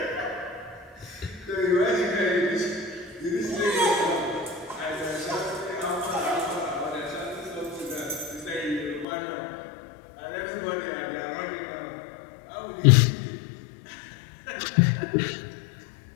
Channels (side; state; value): right; drops out; at 9.1 s